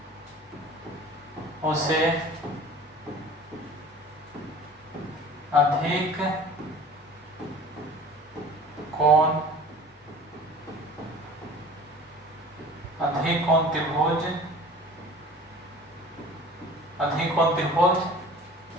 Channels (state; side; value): normal; both; correlation 0.43